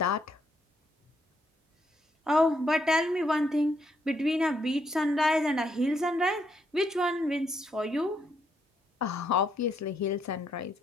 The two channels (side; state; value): both; normal; correlation 0.75